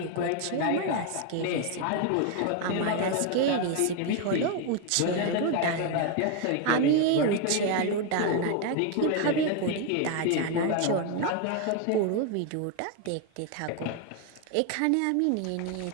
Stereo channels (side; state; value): both; different; correlation 0.01